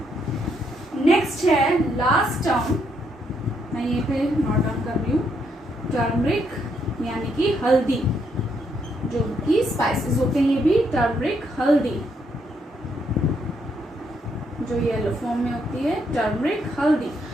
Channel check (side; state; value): both; normal; correlation 0.75